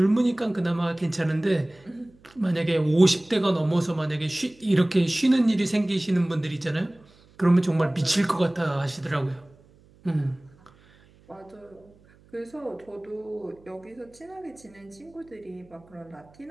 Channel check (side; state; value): right; noise; hum, 28 dB below the sound